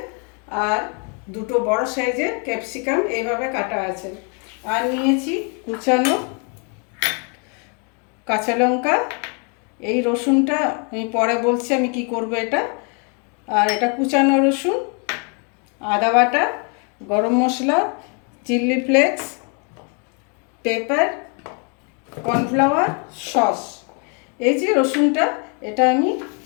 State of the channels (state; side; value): quieter; right; 37.3 dB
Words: আর 2টো বড় সাইজের ক্যাপসিকাম এইভাবে কাটা আছে। আর নিয়েছি কুচানো কাঁচা লঙ্কা। এই রসুনটা আমি পরে বলছি আমি কি করব এটা। আর এটা কুচানো রসুন, আদা বাটা, গরম মশলা, chilli flakes, pepper, cornflour, sauce. এই যে রসুনটা, এটা আমি